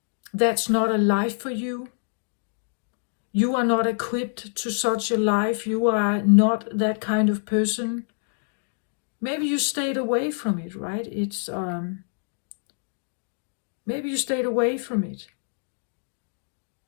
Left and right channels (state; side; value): silent; right; 61 dB below the other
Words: That's not a life for you. You are not equipped to such a life. You are not that kind of person. Maybe you stayed away from it, right? It's maybe you stayed away from it